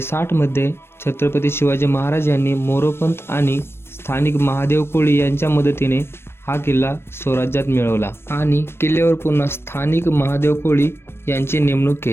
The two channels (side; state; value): right; late; 0.12 ms